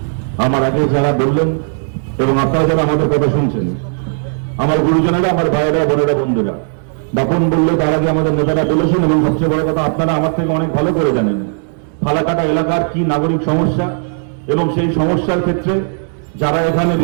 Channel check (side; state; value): left; silent; 65 dB below the other